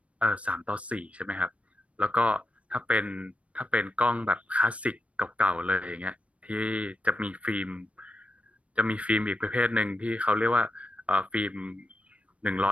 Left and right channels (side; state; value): left; late; 0.064 ms